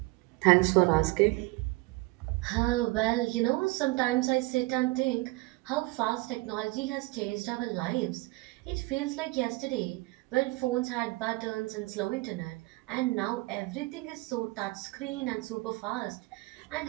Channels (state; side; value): quieter; left; 23.1 dB